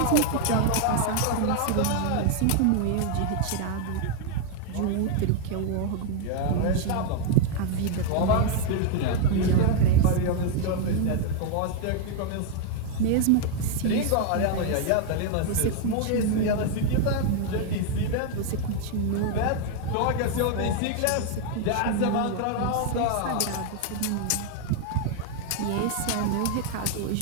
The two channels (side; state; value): both; different; correlation 0.00